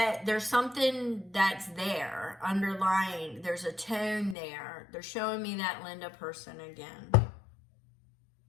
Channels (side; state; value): right; drops out; at 4.4 s